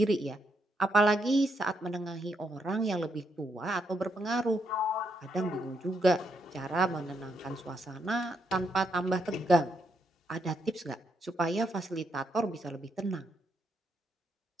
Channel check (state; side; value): normal; both; correlation 0.78